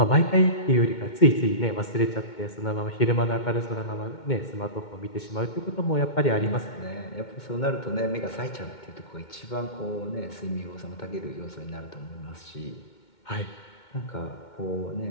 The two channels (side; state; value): right; late; 2.2 ms